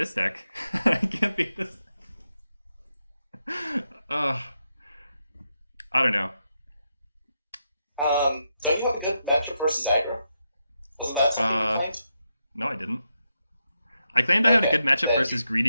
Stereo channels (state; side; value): inverted; both; correlation -0.84